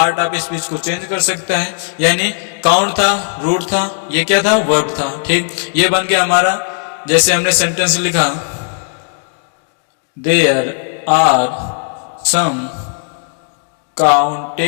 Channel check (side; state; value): right; silent; 62 dB below the other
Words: ऑफ स्पीच को चेंज कर सकता है। यानी काउंट था, रूट था, ये क्या था, वर्ब था। ठीक, ये बन गया हमारा, जैसे हमने सेंटेंस लिखा there are some